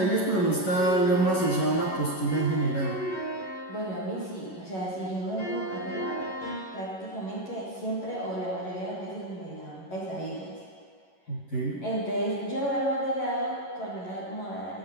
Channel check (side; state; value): right; late; 11 ms